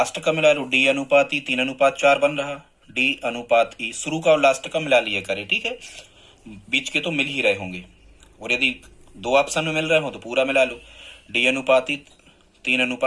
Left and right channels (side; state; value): both; identical; correlation 1.00